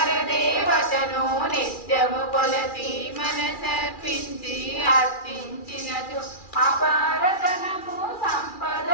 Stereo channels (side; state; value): right; late; 2.4 ms